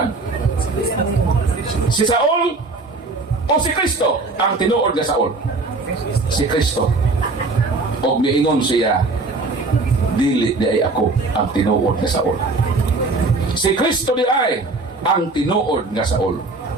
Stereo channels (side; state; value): left; quieter; 3.5 dB